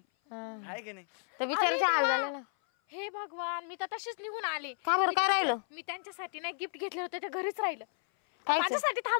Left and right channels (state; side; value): silent; right; 56 dB below the other